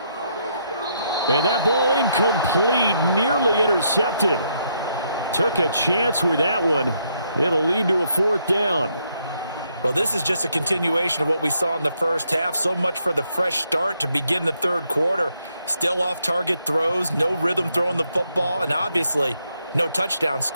And that ball incomplete, nearly intercepted. Took a chance with that one. It'll lead to a 4th down. Well, this is just a continuation of what we saw in the first half. So much for the fresh start to begin the third quarter. Still off-target throws, no rhythm throwing the football, and obviously no touchdown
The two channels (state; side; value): inverted; both; correlation -0.75